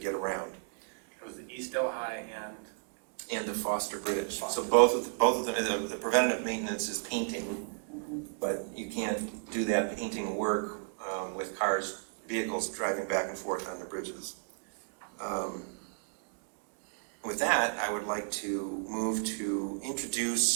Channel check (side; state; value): left; silent; digital silence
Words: around. It was the East Delhi And the Foster Bridge. So both of them, the preventative maintenance is painting, but you can't do that painting work with vehicles driving back and forth on the bridges. With that, I would like to move to